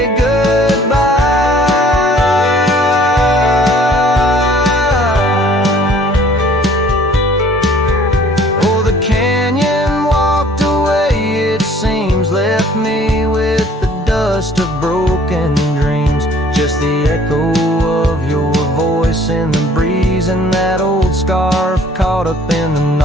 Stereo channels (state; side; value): normal; both; correlation 0.55